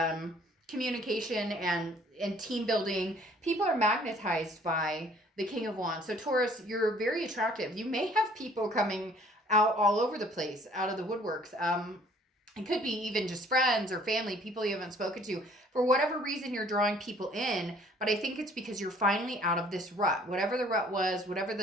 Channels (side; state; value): both; normal; correlation 0.56